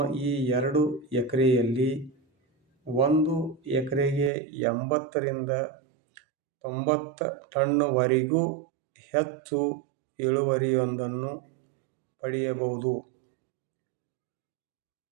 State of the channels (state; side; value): drops out; left; at 4.3 s